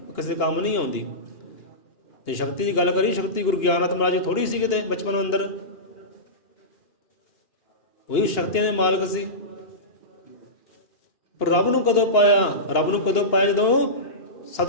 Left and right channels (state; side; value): late; right; 2.9 ms